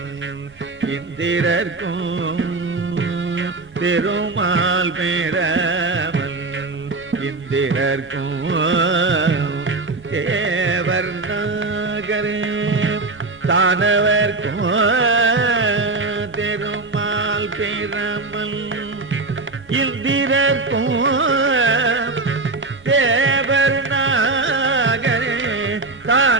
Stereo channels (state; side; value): quieter; left; 3.4 dB